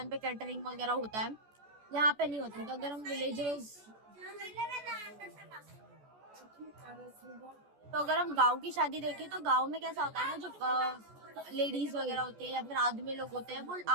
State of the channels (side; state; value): left; late; 14 ms